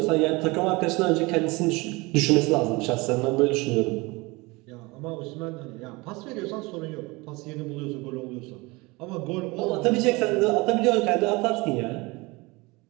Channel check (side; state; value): left; quieter; 24.3 dB